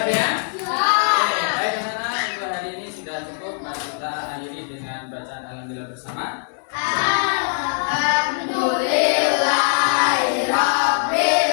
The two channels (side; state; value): right; silent; digital silence